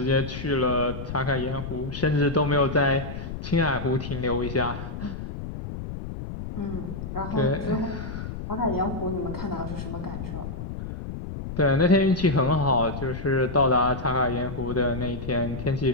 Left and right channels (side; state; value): left; noise; rumble, 7 dB below the sound